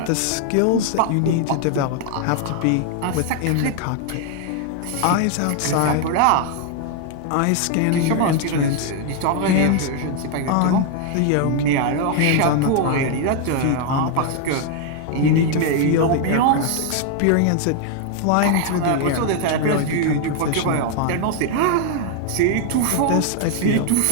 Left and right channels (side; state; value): both; different; correlation 0.00